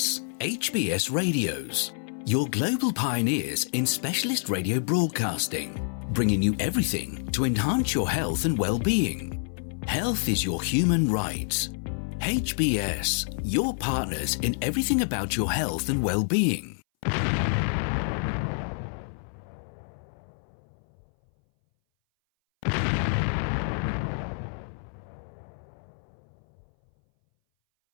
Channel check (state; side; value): silent; right; 59 dB below the other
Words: HBS Radios, your global pioneers in specialist radio broadcasting, bringing you everything to enhance your health and well-being. Health is your human right. HBS, your partners in everything about your health and well-being.